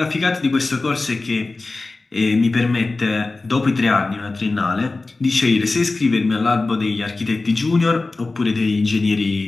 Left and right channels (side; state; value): right; quieter; 3.4 dB